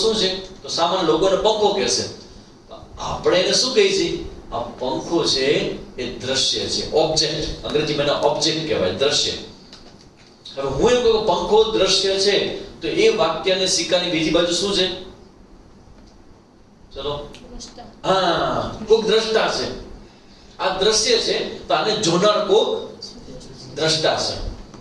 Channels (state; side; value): identical; both; correlation 1.00